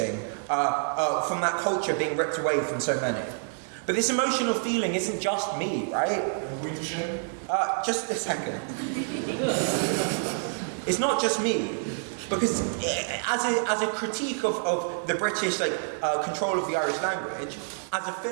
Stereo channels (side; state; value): left; silent; digital silence